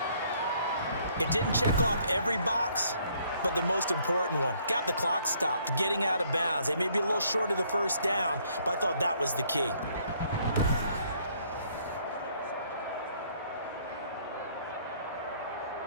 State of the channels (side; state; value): both; inverted; correlation -0.64